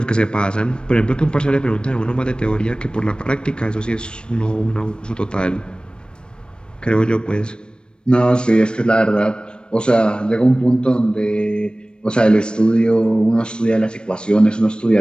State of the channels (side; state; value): right; late; 0.052 ms